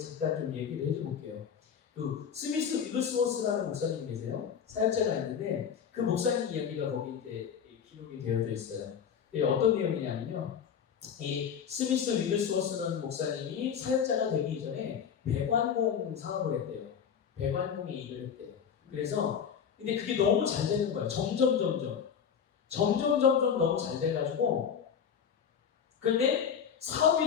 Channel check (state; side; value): quieter; right; 7.6 dB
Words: 좀 얘기를 해줘볼게요. 그 스미스 위글스워스라는 목사님이 계세요. 사역자가 있는데 그 목사님 이야기가 거기 이제 기록이 되어져 있어요. 어떤 내용이냐면요. 이 스미스 위글스워스라는 목사님이 사역자가 되기 이전에 배관공 사업을 했대요. 배관공의 일을 했대요. 그래서 근데 그게 너무 잘 되는 거예요. 점점 너무 잘 돼가지고 근데 사업이